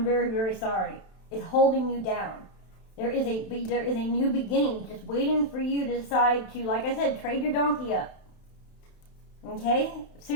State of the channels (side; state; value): right; late; 31 ms